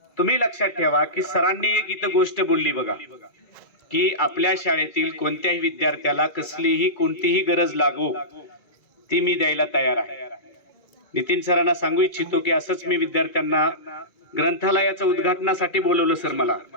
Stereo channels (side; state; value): right; late; 2.3 ms